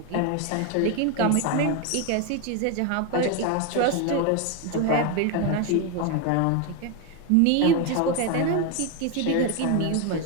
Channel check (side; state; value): both; different; correlation 0.02